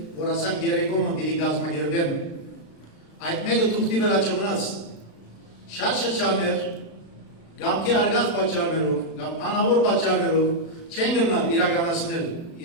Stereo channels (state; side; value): late; right; 36 ms